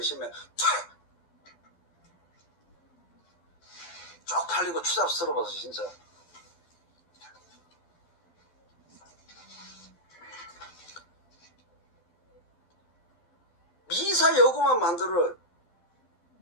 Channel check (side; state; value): right; late; 12 ms